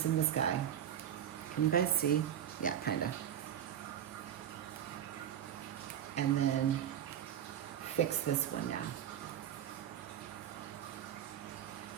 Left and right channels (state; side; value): quieter; left; 10.1 dB